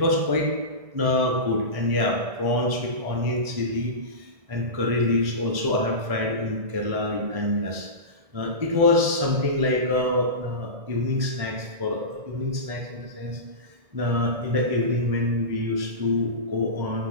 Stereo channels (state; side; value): late; left; 1.6 ms